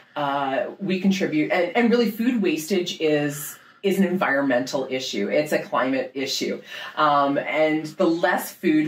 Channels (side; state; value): both; identical; correlation 1.00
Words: we contribute. And really, food wastage is an environmental issue. It's a climate issue. And the less